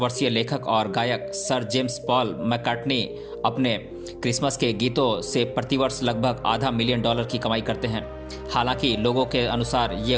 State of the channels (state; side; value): identical; both; correlation 1.00